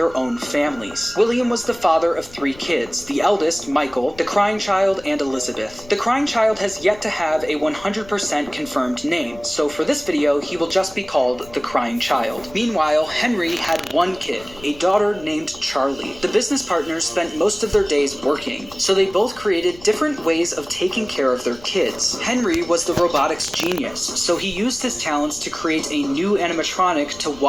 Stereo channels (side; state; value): left; noise; rumble, 21 dB below the sound